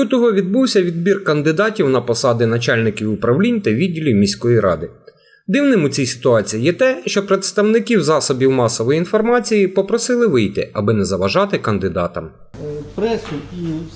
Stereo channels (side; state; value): both; identical; correlation 1.00